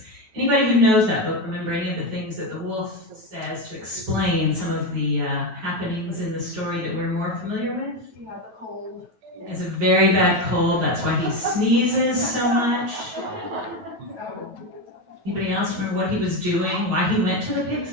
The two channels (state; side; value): late; left; 9.2 ms